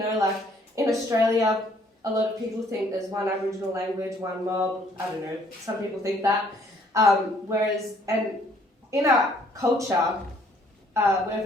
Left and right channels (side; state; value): both; normal; correlation 0.62